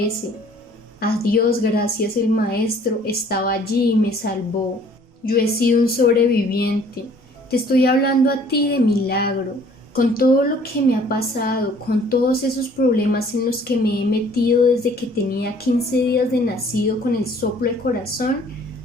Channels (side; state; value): both; normal; correlation 0.56